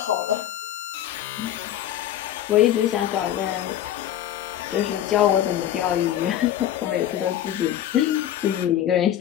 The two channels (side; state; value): right; quieter; 11.5 dB